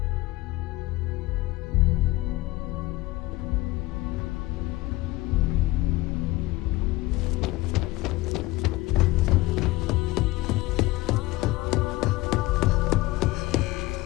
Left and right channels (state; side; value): quieter; right; 19.0 dB